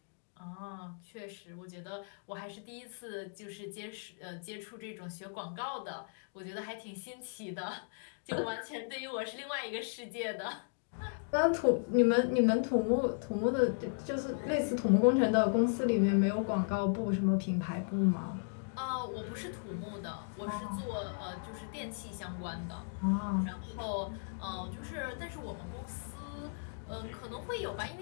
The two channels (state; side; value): silent; right; digital silence